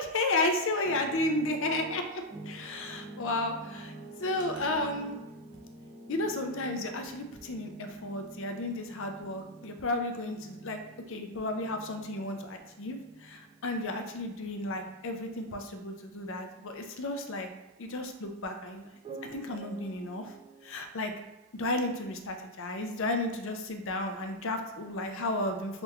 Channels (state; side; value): normal; both; correlation 0.01